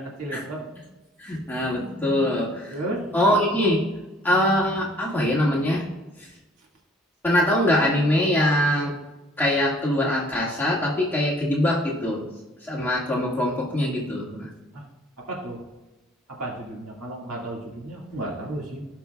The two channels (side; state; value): both; normal; correlation 0.56